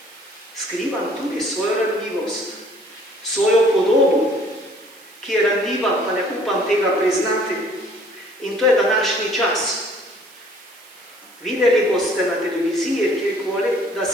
Skrivam tudi svojo ranljivost, svojo podobo, ki je ranljiva, pa ne upam tega priznati. In to je današnji čas. Videli boste na televiziji, kjerkoli, da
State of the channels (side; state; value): right; noise; hiss, 24 dB below the sound